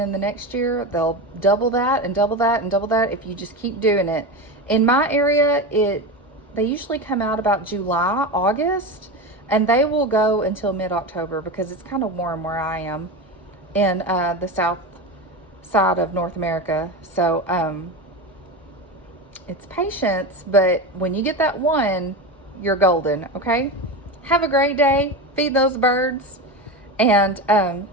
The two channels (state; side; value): normal; both; correlation 0.21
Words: the next year they'll double that and double that and double that if you just keep doing it. In my area, they usually come out about July, August, and they will go until mid-October because it's kind of warm where I am in the south side of North America. So it's patience, but when you get that one, you're golden, okay? Have a great day. Feed those birds, and